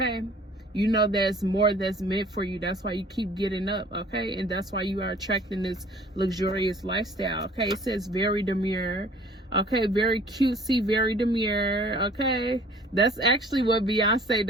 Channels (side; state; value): both; normal; correlation 0.52